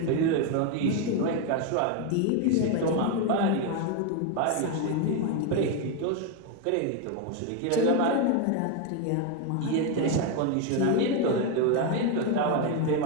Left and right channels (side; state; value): both; different; correlation 0.02